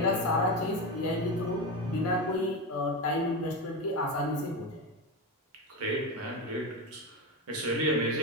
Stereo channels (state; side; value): normal; both; correlation 0.17